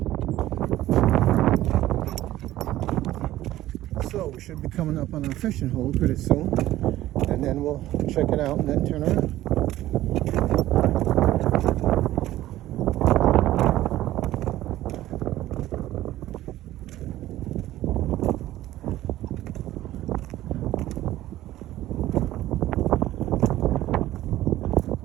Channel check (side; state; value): left; quieter; 14.8 dB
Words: So we should be coming up on our fishing hole pretty soon, and then we'll check it out and then turn around.